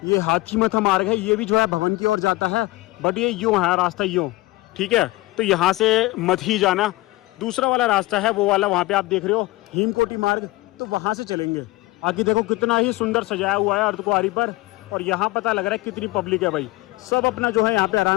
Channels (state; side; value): quieter; right; 20.2 dB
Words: ये हाथी मथा मार्ग है, ये भी जो है भवन की ओर जाता है। बट ये यूँ है रास्ता, यूँ, ठीक है। तो यहाँ से मत ही जाना, दूसरा वाला रास्ता है वो वाला, वहाँ पे आप देख रहे हो हिमकोटी मार्ग, तो वहाँ से चलेंगे। आगे देखो कितना ही सुंदर सजाया हुआ है अर्धकुंवारी पर, और यहाँ पता लग रहा है कितनी पब्लिक है भाई। सब अपना जो है यहाँ पे